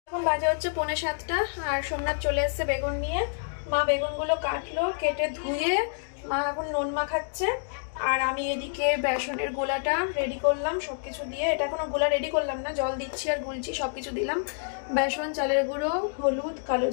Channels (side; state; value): right; silent; digital silence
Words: এখন বাজে হচ্ছে 6:45, আর সোমনাথ চলে এসছে বেগুন নিয়ে। মা বেগুনগুলো কাটলো, কেটে ধুয়ে মা এখন নুন মাখাচ্ছে। আর আমি এদিকে বেসনের গোলাটা রেডি করলাম সবকিছু দিয়ে। এটা এখনো গোলা রেডি করলাম না, জল দিচ্ছি আর গুলছি, সবকিছু দিলাম। বেসন, চালের গুঁড়ো, হলুদ, কালো